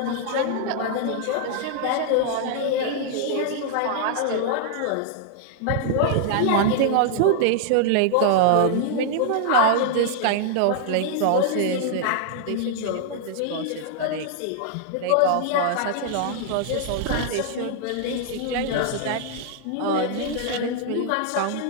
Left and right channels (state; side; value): different; both; correlation -0.01